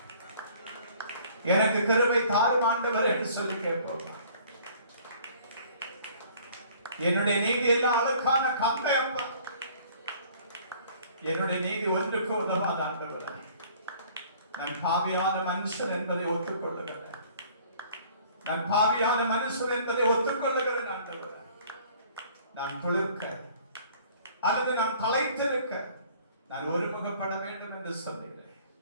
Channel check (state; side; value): inverted; both; correlation -0.54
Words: எனக்கு கிருபை தாரும் ஆண்டவர் என்று சொல்லி கேட்போம். என்னுடைய நீதி எல்லாம் அழுக்கான கம்பை அப்பா, என்னுடைய நீதி ஒன்றுக்கு உதவாத ஆண்டவர். நான் பாவியான மனுஷன் என்பதை ஒத்துக்கொள்ளுகிறேன். நான் பாவியான மனுஷன் என்பதை ஒத்துக்கொள்ளுகிறேன் ஆண்டவர். நான் துளிர்க்க அல்லது நான் தலைத்திருக்க நான் ஒருமுகப்பட வேண்டும் என்று சொன்னீர்கள்.